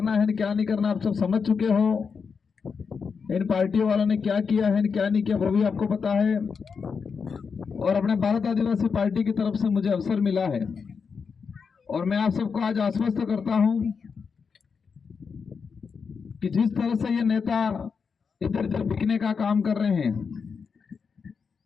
है क्या नहीं करना आप सब समझ चुके हो। इन पार्टियों वालों ने क्या किया है क्या नहीं किया वो भी आपको पता है और अपने भारत आदिवासी पार्टी की तरफ से मुझे अवसर मिला है और मैं आप सबको आज आश्वस्त करता हूं कि जिस तरह से ये नेता इधर उधर बिकने का काम कर रहे हैं,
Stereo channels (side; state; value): right; quieter; 5.7 dB